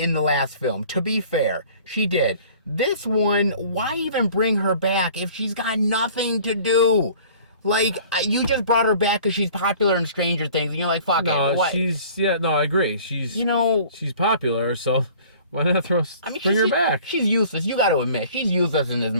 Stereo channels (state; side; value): inverted; both; correlation -0.49